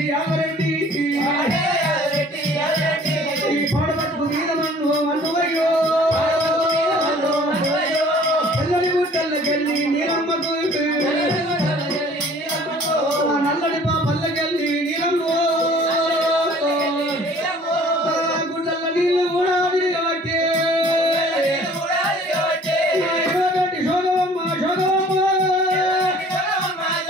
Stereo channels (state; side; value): normal; both; correlation 0.52